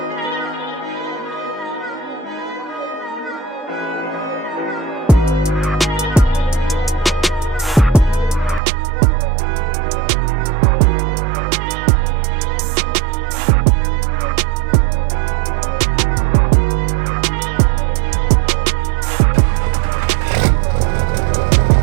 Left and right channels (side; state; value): left; drops out; at 8.6 s